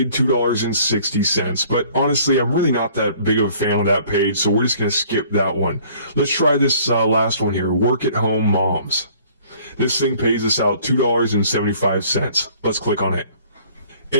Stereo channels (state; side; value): inverted; both; correlation -0.55